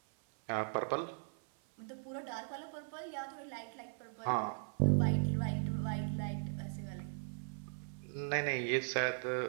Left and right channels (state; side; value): silent; left; 52 dB below the other